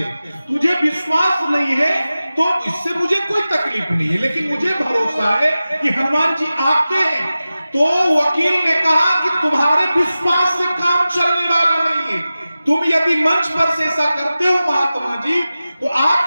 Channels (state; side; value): inverted; both; correlation -0.95